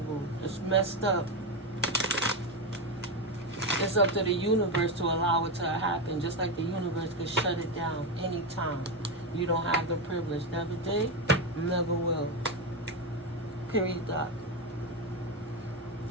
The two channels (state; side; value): normal; both; correlation 0.11